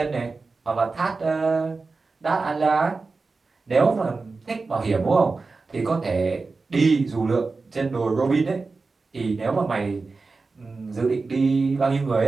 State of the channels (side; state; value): left; quieter; 4.0 dB